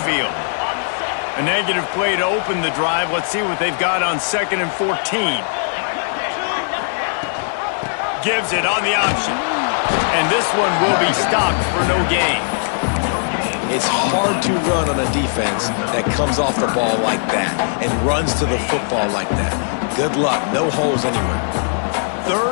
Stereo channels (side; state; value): right; silent; 62 dB below the other